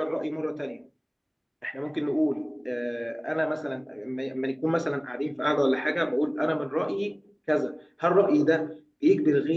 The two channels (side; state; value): both; identical; correlation 1.00